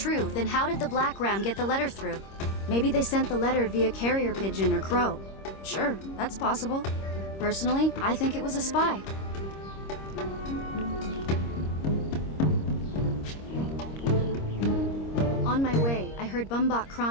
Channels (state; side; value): late; right; 26 ms